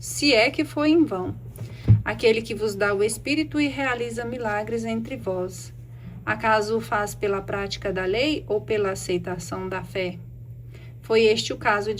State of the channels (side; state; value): both; identical; correlation 1.00